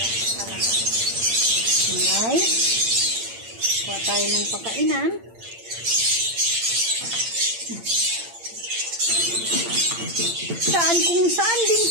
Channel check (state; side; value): late; left; 8.8 ms